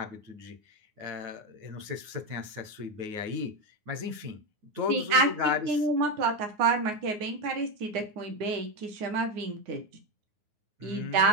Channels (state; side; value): late; left; 9.5 ms